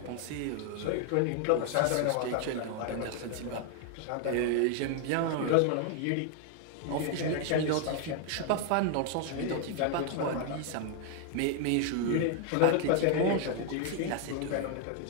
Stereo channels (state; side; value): different; both; correlation 0.00